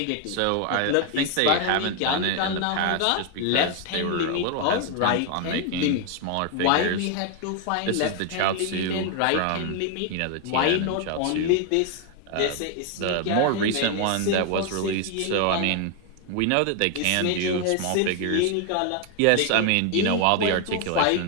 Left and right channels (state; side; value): different; both; correlation 0.01